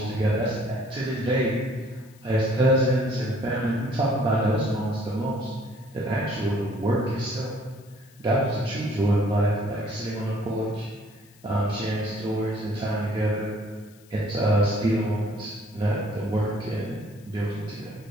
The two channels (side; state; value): left; noise; hiss, 28 dB below the sound